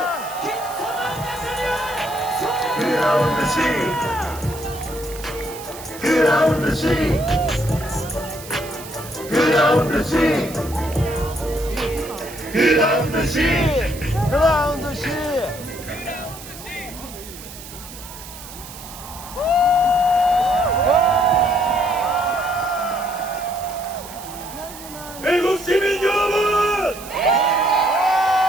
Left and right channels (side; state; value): right; noise; hiss, 15 dB below the sound